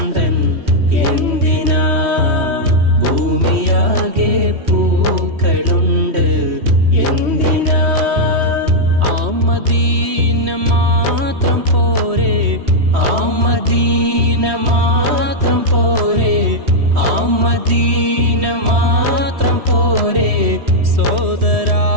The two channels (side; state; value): left; late; 3.1 ms